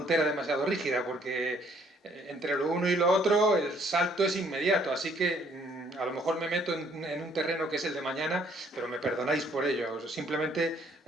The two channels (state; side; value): normal; both; correlation 0.64